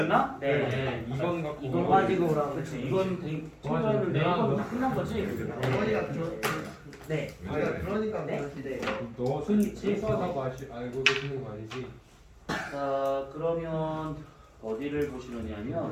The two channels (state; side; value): identical; both; correlation 1.00